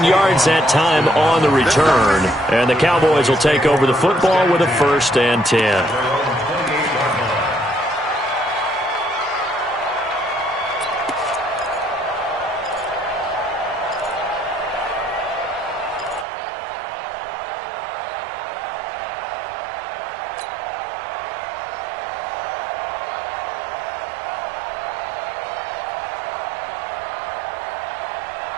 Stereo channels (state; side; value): drops out; left; at 16.2 s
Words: yards that time on the return. And the Cowboys will take over the football with a 1st and 10.